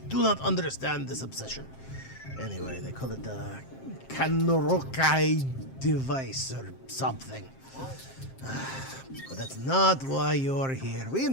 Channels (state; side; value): late; right; 7.6 ms